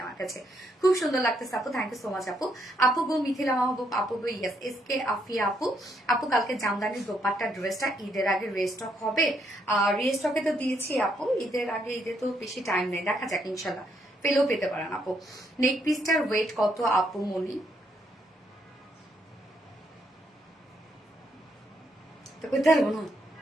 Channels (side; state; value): both; normal; correlation 0.74